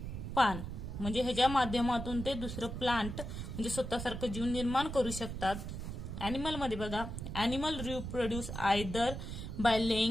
पान. म्हणजे ह्याच्या माध्यमातून ते दुसरं प्लांट म्हणजे स्वतःसारखं जीव निर्माण करू शकतात. अॅनिमल मध्ये बघा, animal reproduce either by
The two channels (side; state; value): right; noise; rumble, 6 dB below the sound